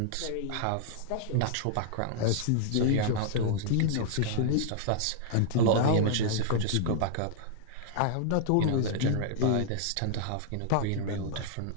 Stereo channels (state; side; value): different; both; correlation -0.01